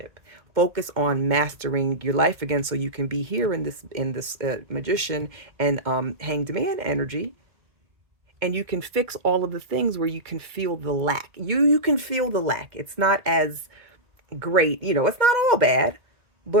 Focus on mastering your life again, so you can be here in this magician and hanged man energy, and you can fix all of the things where you can feel the lack. You can feel the lack. It's not as great, it's not all bad,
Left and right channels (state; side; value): late; left; 2.1 ms